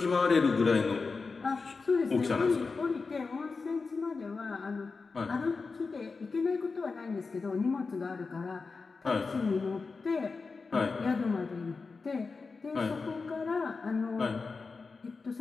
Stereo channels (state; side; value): quieter; right; 4.4 dB